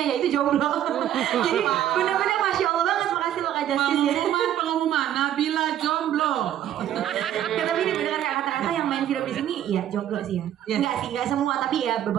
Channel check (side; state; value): left; quieter; 11.3 dB